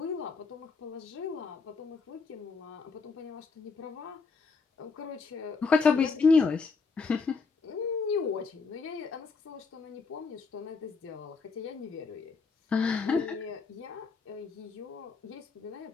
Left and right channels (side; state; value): right; quieter; 4.6 dB